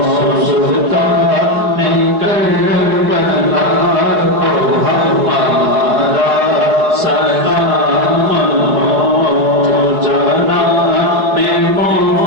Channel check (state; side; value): late; left; 4.7 ms